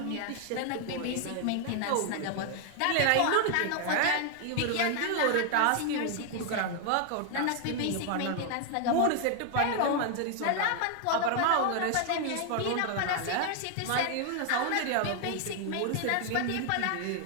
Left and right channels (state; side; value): different; both; correlation 0.00